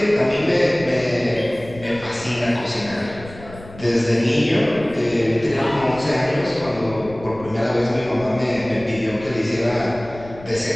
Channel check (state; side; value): noise; left; rumble, 17 dB below the sound